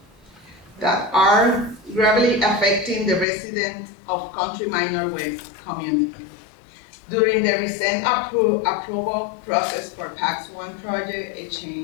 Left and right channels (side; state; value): right; drops out; at 3.2 s